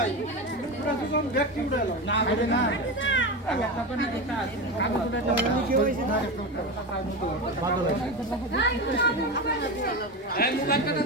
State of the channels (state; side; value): normal; both; correlation 0.20